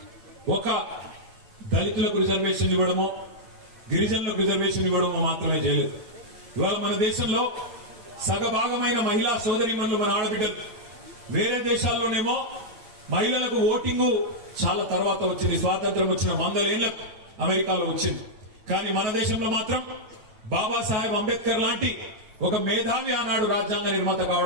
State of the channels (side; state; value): left; late; 9.4 ms